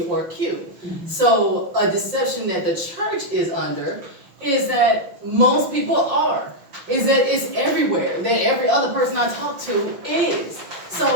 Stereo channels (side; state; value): left; late; 5.8 ms